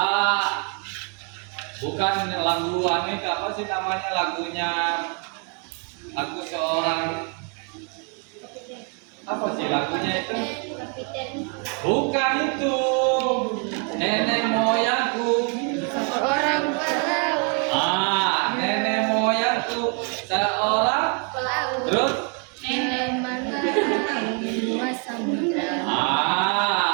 bukan lagu Amerika, apa sih namanya lagunya? Lagu seorang apa sih lagunya itu? Bukan itu. Nenek moyangku Orang pelaut. nenek moyangku seorang Pelaut. terus Nenek mengenai samudra.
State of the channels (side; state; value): left; quieter; 38.4 dB